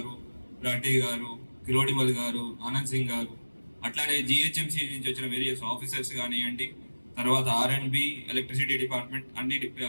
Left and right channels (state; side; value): inverted; both; correlation -1.00